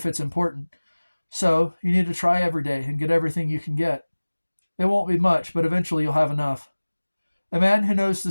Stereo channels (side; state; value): both; inverted; correlation -1.00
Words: it's important. So you need to try every day and get everything you can get. It won't be much, but eventually you'll have enough. A man who knows the